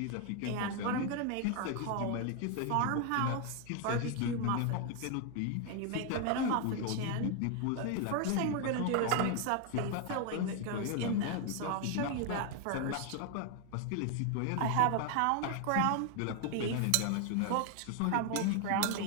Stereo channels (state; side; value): different; both; correlation 0.00